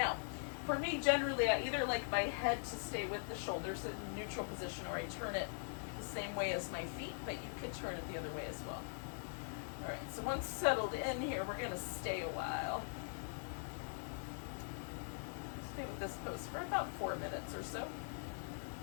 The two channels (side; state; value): right; silent; digital silence